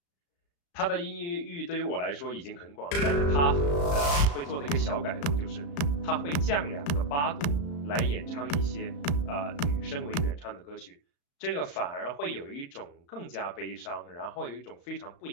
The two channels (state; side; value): late; right; 35 ms